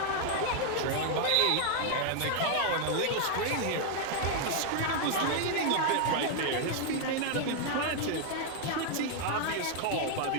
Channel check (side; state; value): both; different; correlation 0.00